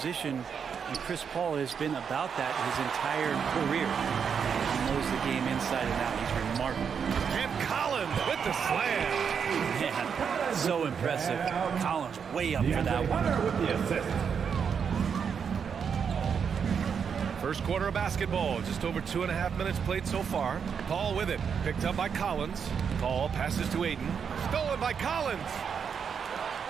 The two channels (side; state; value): left; quieter; 6.8 dB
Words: and Chris Paul has been about that his entire career. He knows the game inside and out. He's remarkable. And Collins with the slam. Man, so impressive. Collins way up for that one. With the assist. First quarter of basketball, just over 2.5 minutes played so far. Paul with it, picked up by Collins. Paul passes to Ayton, stolen by Collins.